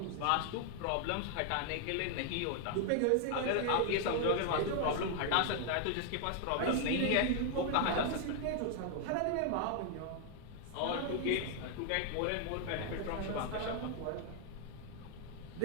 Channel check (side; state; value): both; different; correlation 0.00